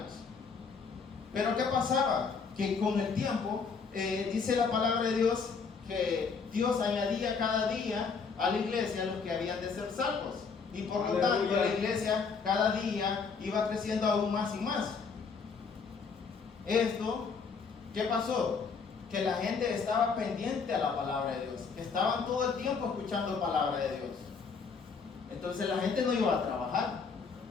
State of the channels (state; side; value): quieter; right; 5.3 dB